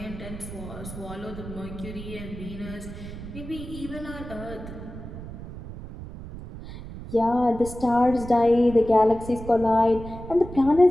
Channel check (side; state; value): right; noise; rumble, 12 dB below the sound